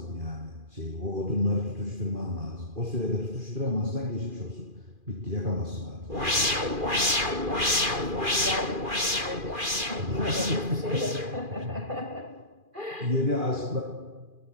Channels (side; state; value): left; late; 2.4 ms